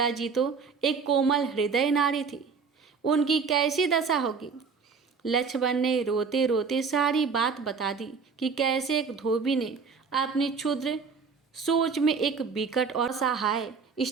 जी तो एक कोमल हृदय नारी थी, उनकी कैसी दशा होगी। लक्ष्मण ने रोते रोते सारी बात बता दी कि कैसे एक धोबी ने अपनी क्षुद्र सोच में एक विकट और सहाय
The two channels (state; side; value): quieter; left; 5.3 dB